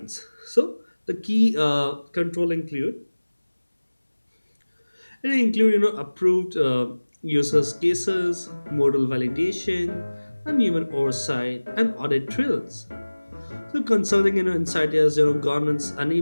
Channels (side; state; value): both; inverted; correlation -1.00